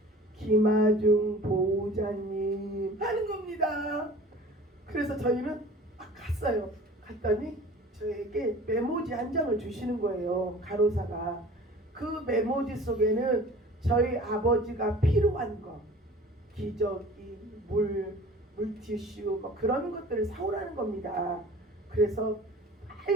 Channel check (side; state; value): both; normal; correlation 0.44